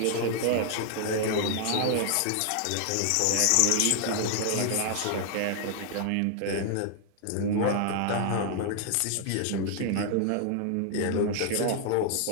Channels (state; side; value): different; both; correlation 0.00